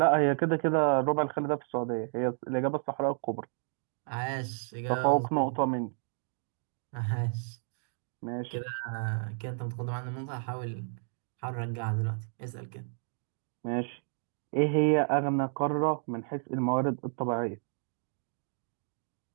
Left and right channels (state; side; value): silent; left; digital silence